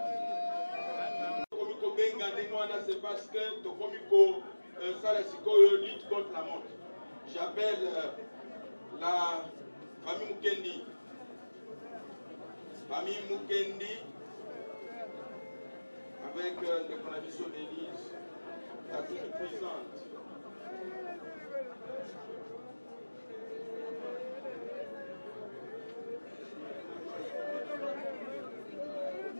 c'est parce que Tokomiko Salasikoyo lutte contre la mort. J'appelle la famille Mukendi. Famille Mukendi, avec les conditions d'Élise, la toute puissante.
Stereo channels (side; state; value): both; inverted; correlation -1.00